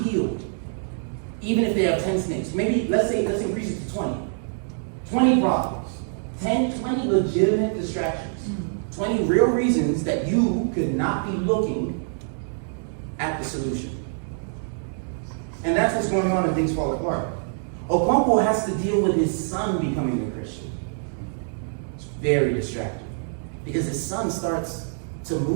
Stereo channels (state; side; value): silent; left; 62 dB below the other